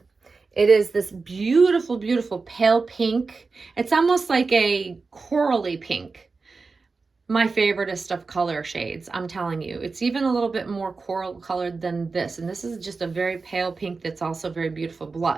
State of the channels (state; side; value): quieter; left; 4.2 dB